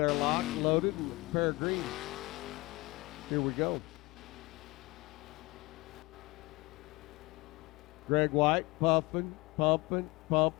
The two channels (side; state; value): right; quieter; 23.3 dB